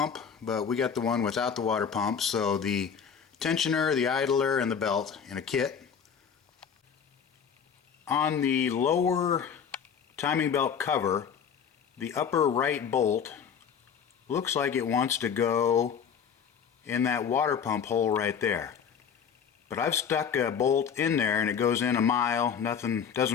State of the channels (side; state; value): right; quieter; 7.3 dB